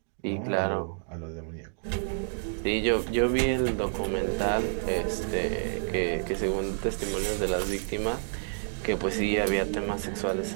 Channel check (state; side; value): silent; left; digital silence